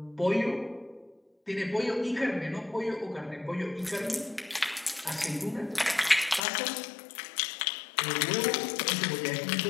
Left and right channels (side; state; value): right; drops out; at 6.4 s